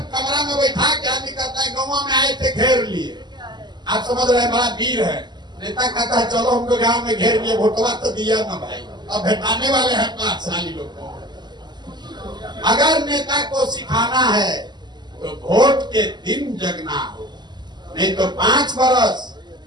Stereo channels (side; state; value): left; late; 0.21 ms